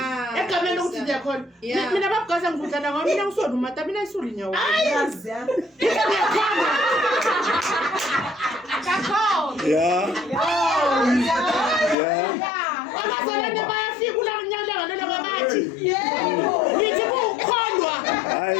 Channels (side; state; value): right; drops out; at 12.0 s